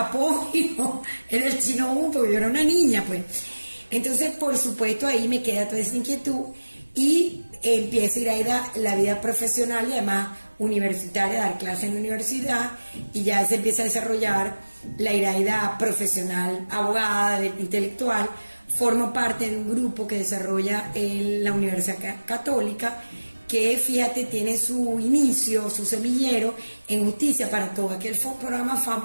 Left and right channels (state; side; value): inverted; both; correlation -1.00